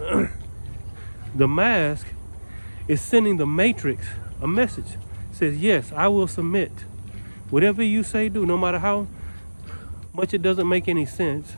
the mask is sending the matrix a message. It says, yes, I will submit. Whatever you say, do, no matter how much it doesn't make any sense,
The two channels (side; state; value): both; inverted; correlation -1.00